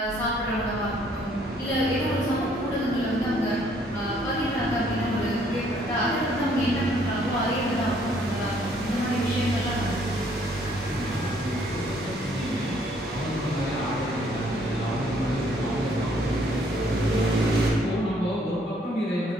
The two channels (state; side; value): normal; both; correlation 0.64